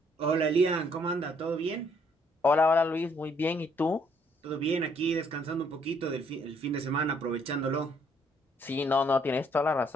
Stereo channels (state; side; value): normal; both; correlation 0.67